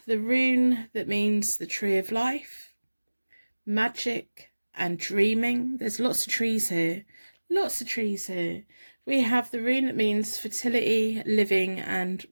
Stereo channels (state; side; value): inverted; both; correlation -1.00